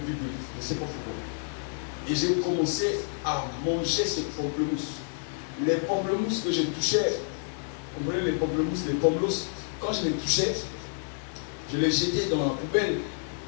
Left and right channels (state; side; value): silent; right; 58 dB below the other